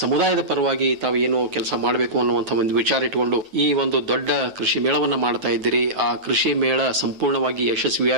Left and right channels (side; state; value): left; late; 9.4 ms